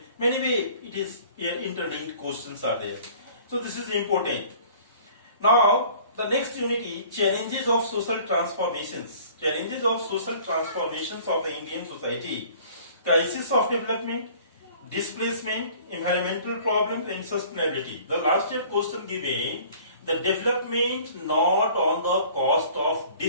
Many way it is here interlinked questions are there. So this is important. Now the next unit is challenges of social transformations. Challenges of social transformations of the Indian society. Crisis of development, displacement, environmental problems and sustainability. The last year question given, the development not on the cost of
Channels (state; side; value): inverted; both; correlation -0.50